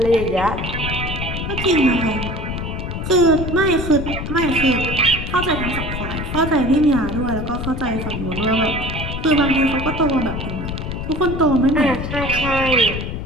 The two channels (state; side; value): noise; left; rumble, 5 dB below the sound